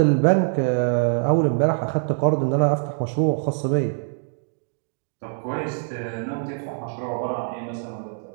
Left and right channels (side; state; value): left; silent; digital silence